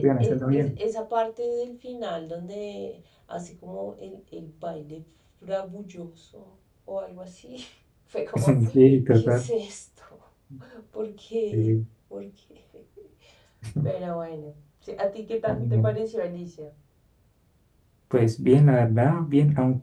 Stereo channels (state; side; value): identical; both; correlation 1.00